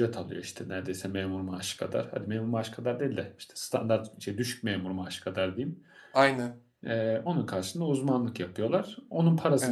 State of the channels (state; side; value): identical; both; correlation 1.00